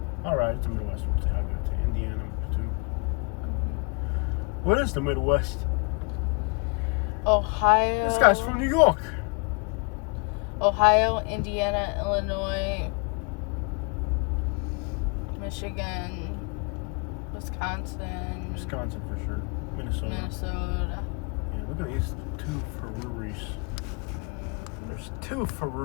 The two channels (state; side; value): quieter; right; 34.1 dB